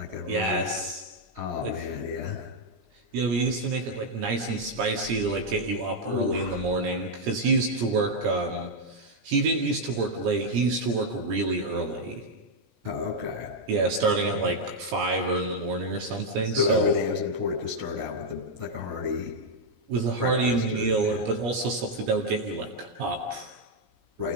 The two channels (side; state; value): left; late; 17 ms